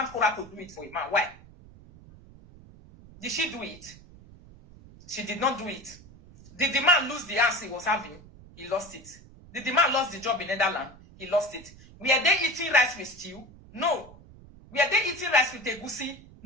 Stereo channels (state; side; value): noise; right; rumble, 21 dB below the sound